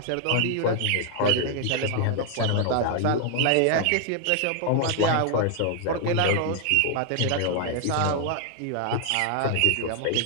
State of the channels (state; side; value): different; both; correlation 0.00